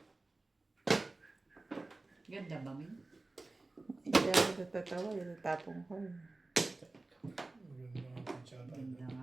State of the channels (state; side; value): quieter; left; 3.1 dB